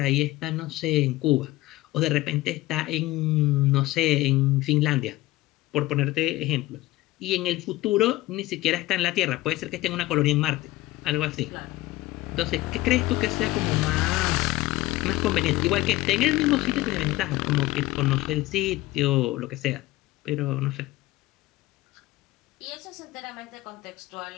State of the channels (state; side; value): quieter; right; 18.0 dB